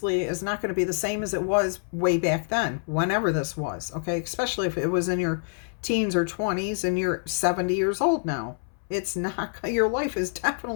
is not going to be the same as it was way back then, whenever this was, okay? Especially if it was in your teens or 20s and you're 70 years old now. It's not, your life is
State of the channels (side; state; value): right; silent; 61 dB below the other